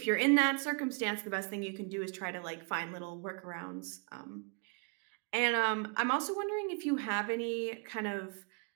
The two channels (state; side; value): quieter; left; 35.9 dB